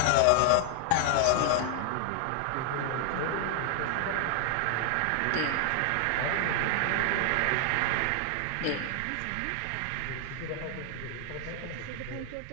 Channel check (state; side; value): different; both; correlation 0.00